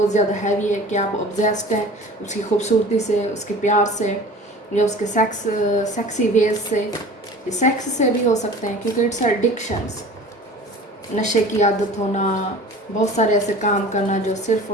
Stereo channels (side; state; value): both; normal; correlation 0.41